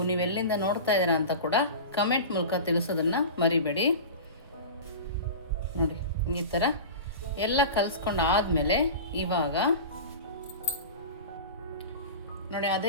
ನೀವೆಲ್ಲಿಂದ ನೋಡ್ತಾ ಇದ್ದೀರಾ ಅಂತ ಕೂಡ ಕಮೆಂಟ್ ಮೂಲಕ ತಿಳಿಸೋದನ್ನು ಮರಿಬೇಡಿ. ನೋಡಿ, ಈ ಥರ ಎಲ್ಲ ಕಲಿಸ್ಕೊಂಡು ಆದಮೇಲೆ ಇವಾಗ ನೋಡಿ,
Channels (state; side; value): inverted; both; correlation -0.31